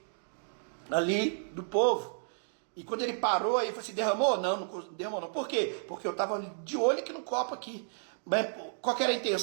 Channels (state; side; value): silent; left; digital silence